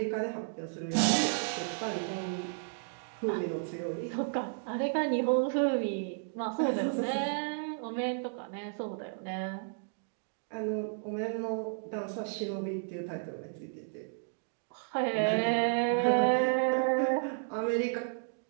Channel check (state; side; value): silent; left; digital silence